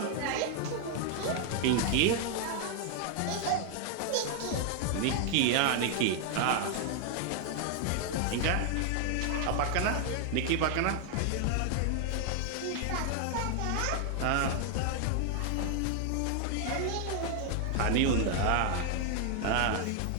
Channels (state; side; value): different; both; correlation 0.00